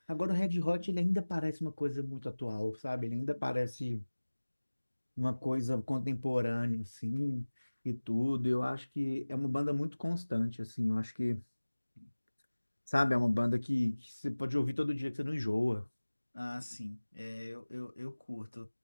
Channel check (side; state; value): both; inverted; correlation -1.00